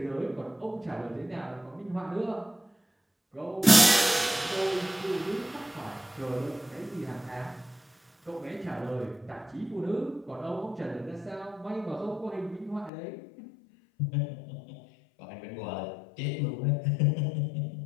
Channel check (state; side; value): drops out; right; at 12.9 s